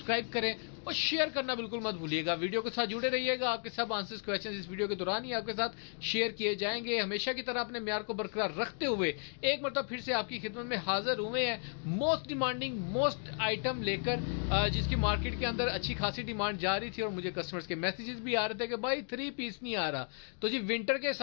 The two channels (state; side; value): silent; right; 55 dB below the other